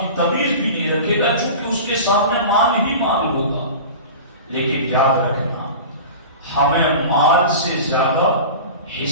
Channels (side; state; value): both; inverted; correlation -0.34